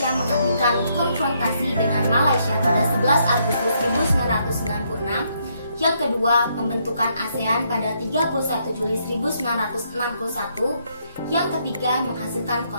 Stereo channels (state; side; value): inverted; both; correlation -0.74